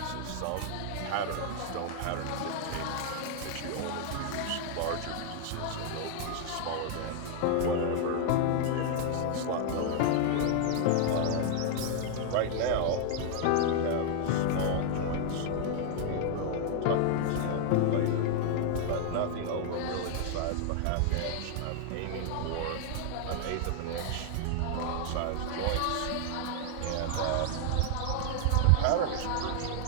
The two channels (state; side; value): different; both; correlation 0.00